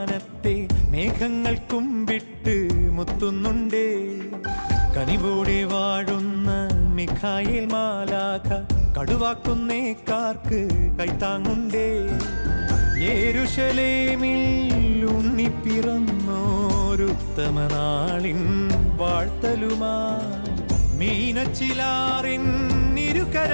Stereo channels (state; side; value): inverted; both; correlation -1.00